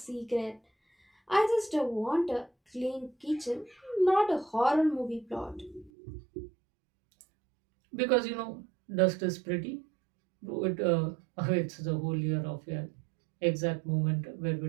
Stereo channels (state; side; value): drops out; left; at 5.9 s